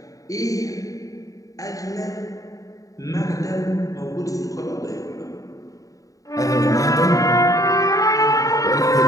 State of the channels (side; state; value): right; late; 0.16 ms